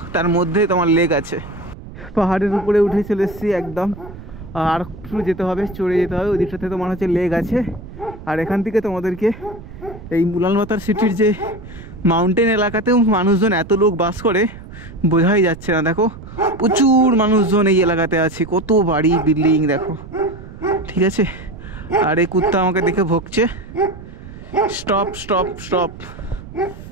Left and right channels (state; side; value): noise; right; rumble, 15 dB below the sound